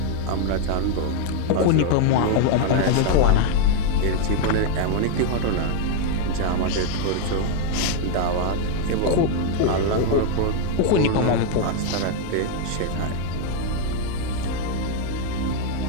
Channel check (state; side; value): different; both; correlation 0.00